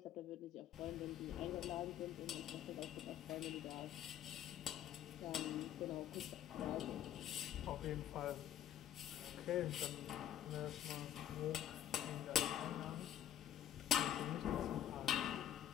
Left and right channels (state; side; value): quieter; right; 11.1 dB